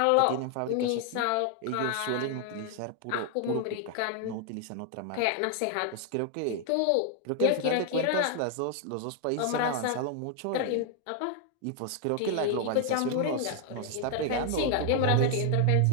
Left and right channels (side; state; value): both; different; correlation 0.00